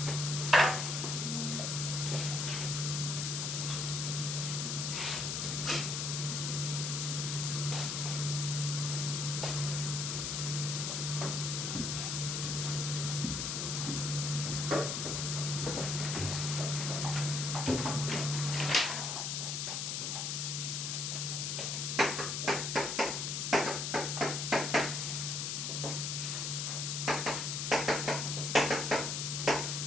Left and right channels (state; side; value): noise; left; hiss, 1 dB below the sound